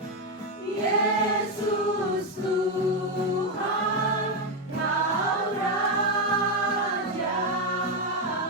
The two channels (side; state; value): both; normal; correlation 0.07